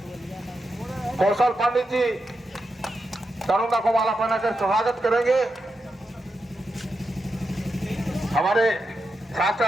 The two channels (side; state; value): both; normal; correlation 0.87